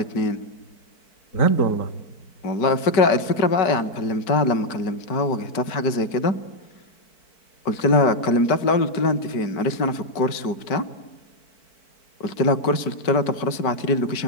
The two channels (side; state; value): right; late; 4.5 ms